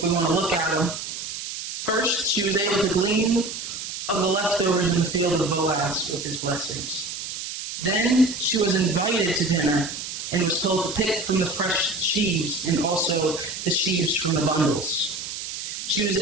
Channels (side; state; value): right; noise; hiss, 7 dB below the sound